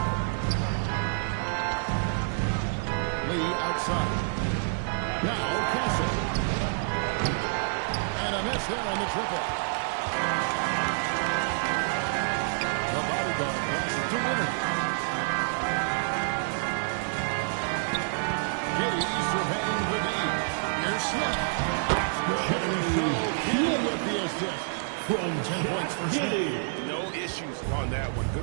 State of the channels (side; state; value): left; silent; digital silence